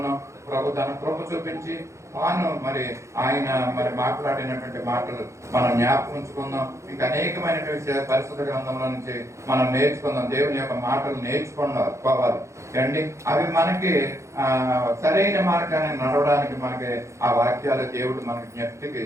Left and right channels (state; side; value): late; left; 0.14 ms